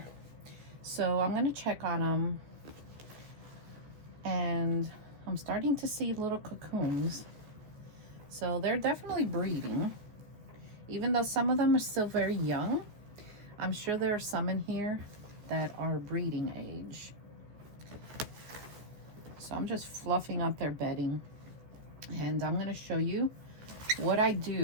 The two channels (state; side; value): late; left; 14 ms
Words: So I'm going to check on them. And I'm starting to see little cocoons. So they're definitely breeding. Even though some of them are still very young, I'm sure there are some in here that are breeding age. So I'm just fluffing up their bedding, and I'm going to show you what I